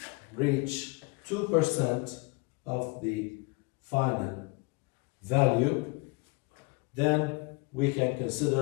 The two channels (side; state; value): right; quieter; 28.2 dB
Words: reach 2% of the final value, then we can